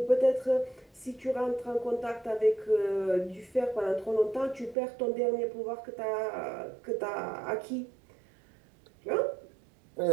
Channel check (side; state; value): left; drops out; at 4.8 s